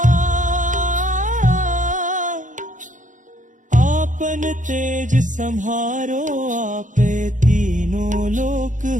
आपन तेज सम्हारो आपे, तीनों लोक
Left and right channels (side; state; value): left; late; 0.37 ms